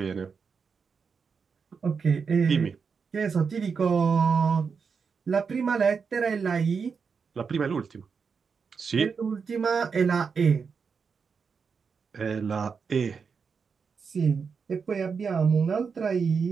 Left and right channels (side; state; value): left; quieter; 5.7 dB